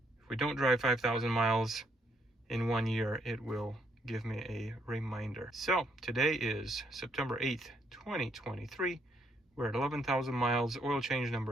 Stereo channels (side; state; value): both; normal; correlation 0.73